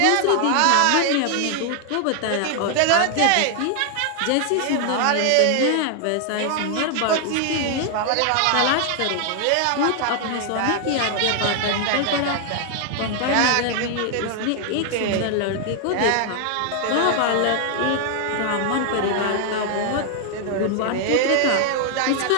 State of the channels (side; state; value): both; different; correlation 0.00